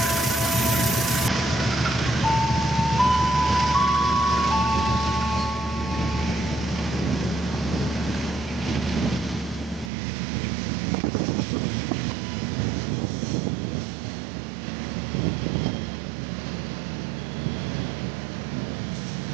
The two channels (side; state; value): left; drops out; at 9.9 s